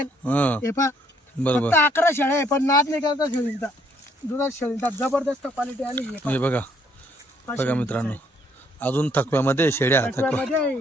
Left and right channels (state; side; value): normal; both; correlation 0.67